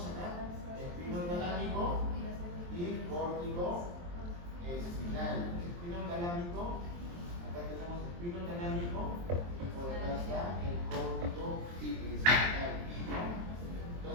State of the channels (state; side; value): late; left; 23 ms